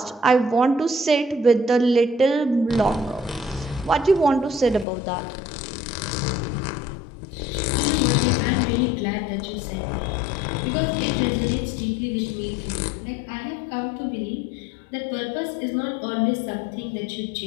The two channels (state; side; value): drops out; right; at 4.9 s